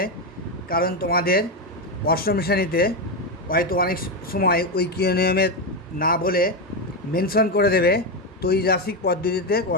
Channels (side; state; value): both; normal; correlation 0.10